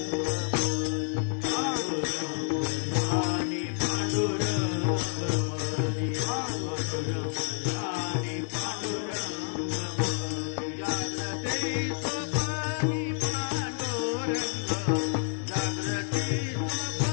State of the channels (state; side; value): silent; right; digital silence